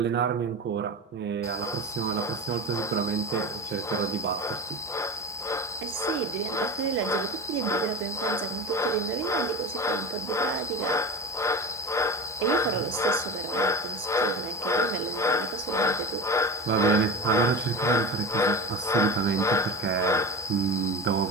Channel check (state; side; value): normal; both; correlation 0.27